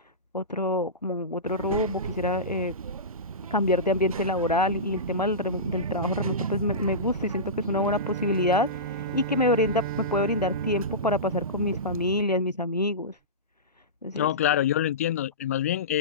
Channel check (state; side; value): normal; both; correlation -0.19